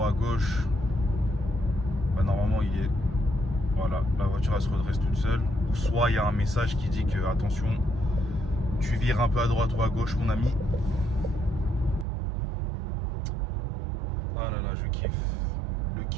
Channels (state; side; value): drops out; left; at 12.1 s